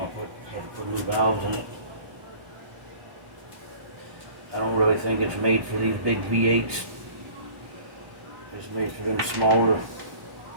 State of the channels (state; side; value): late; left; 1.0 ms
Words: I had to put new valves in it. I don't really think it's made for these big V8s. It's made for them smaller.